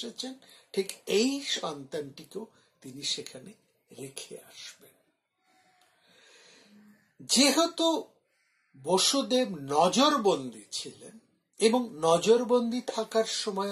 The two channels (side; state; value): both; identical; correlation 1.00